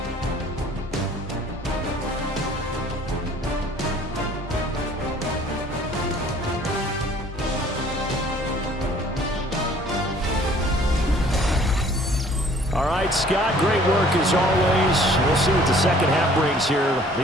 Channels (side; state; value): both; normal; correlation 0.55